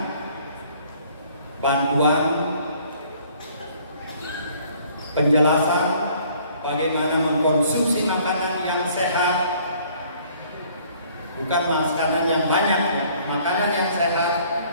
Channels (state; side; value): inverted; both; correlation -0.58